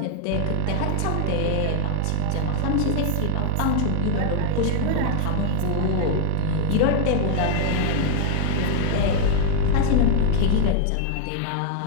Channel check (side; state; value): both; different; correlation 0.00